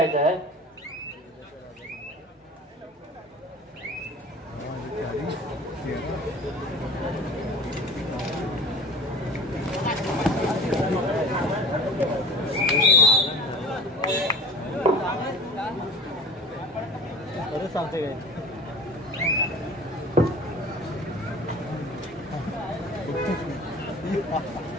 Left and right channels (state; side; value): normal; both; correlation 0.40